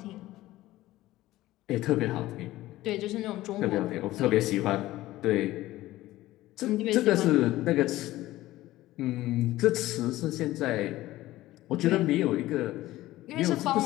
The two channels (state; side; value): quieter; right; 16.4 dB